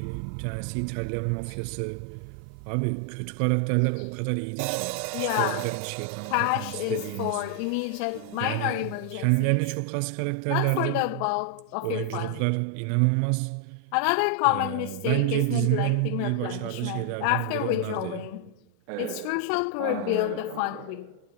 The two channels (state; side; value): different; both; correlation 0.00